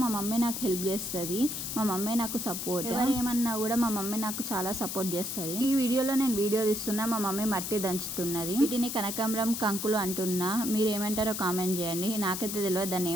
మా మమ్మీ నాకు హెల్ప్ చేస్తుంది. మా మమ్మీ నాకు సపోర్ట్. ఎవరేమన్నా కూడా మా మమ్మీ నాకు చాలా సపోర్ట్ చేస్తుంది. ఈ వీడియోలో నేను వీడియో తీస్తున్నా, మా మమ్మీ మట్టి దంచుతున్నది. వీటిని కనకాంబరం కంకులు అంటున్నా. మీరు ఏమంటారో కామెంట్ చేయండి. నాకైతే తెలియదు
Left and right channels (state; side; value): noise; left; hiss, 4 dB below the sound